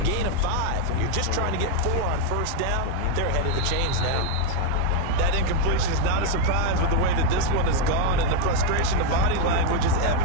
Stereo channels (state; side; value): different; both; correlation 0.01